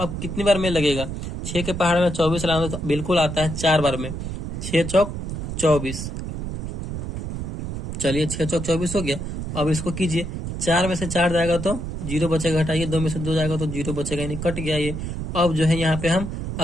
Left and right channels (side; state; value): right; noise; rumble, 5 dB below the sound